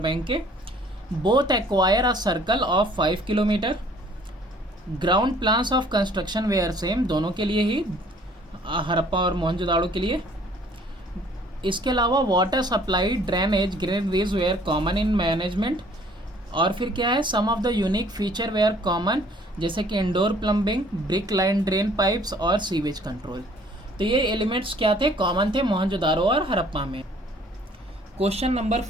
के। Both acquire a circle of 5 kilometre. Ground plans of construction were same, दोनों के लिए ही, हड़प्पा और मोहनजोदाड़ो के लिए। इसके अलावा water supply, drainage, granaries were common in management. और फिर क्या है, some of the unique feature were common, जैसे कि indoor plumbing, brick line drain pipes और सीवेज कंट्रोल। तो ये एलिमेंट्स क्या थे, कॉमन थे मोहनजोदारो और हड़प्पा में। क्वेश्चन नंबर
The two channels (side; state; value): both; normal; correlation 0.57